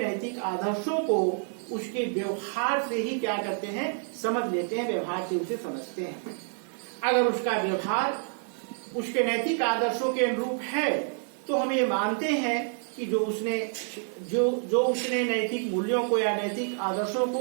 आदर्शों को उसके व्यवहार से ही क्या करते हैं, समझ लेते हैं, व्यवहार से उसे समझते हैं। अगर उसका व्यवहार उसके नैतिक आदर्शों के अनुरूप है तो हम ये मानते हैं कि जो उसने नैतिक मूल्यों को या नैतिक आदर्शों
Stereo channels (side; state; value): left; silent; 59 dB below the other